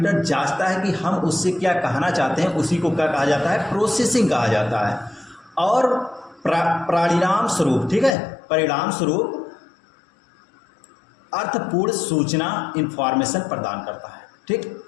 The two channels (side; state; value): right; drops out; at 8.2 s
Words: जांचता है कि हम उससे क्या कहना चाहते हैं, उसी को क्या कहा जाता है? प्रोसेसिंग कहा जाता है। और परिणाम स्वरूप, ठीक है, परिणाम स्वरूप अर्थपूर्ण सूचना इंफॉर्मेशन प्रदान करता है। ठीक,